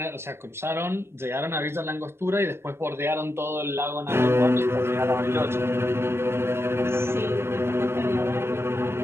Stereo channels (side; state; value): left; late; 0.12 ms